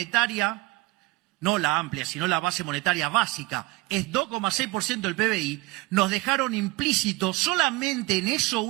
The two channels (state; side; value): quieter; left; 22.0 dB